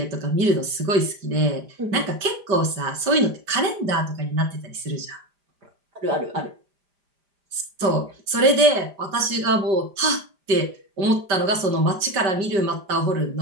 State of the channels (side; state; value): left; late; 5.2 ms